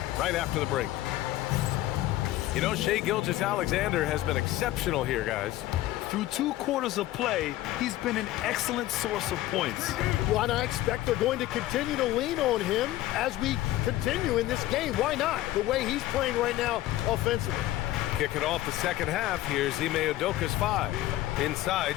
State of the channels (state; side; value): quieter; right; 15.3 dB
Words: right after the break. You know, Shai Gilgeous-Alexander has been exceptional here, guys. Through 2 quarters of play, he's been an excellent source of points. Well, and I expect they're going to continue to lean on him as we continue in this game. Why not? The way he's playing right now offensively. Kicking off the second half, here's Ime Udoka's 5. Inside,